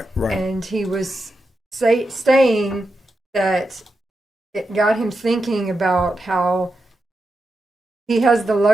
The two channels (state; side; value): normal; both; correlation 0.88